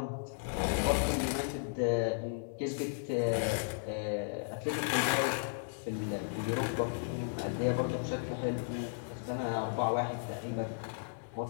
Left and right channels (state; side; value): silent; right; digital silence